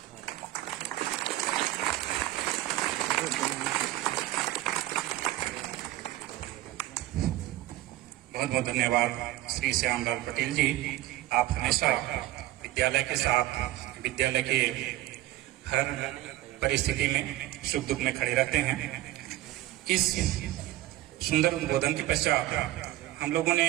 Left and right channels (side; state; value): left; quieter; 15.9 dB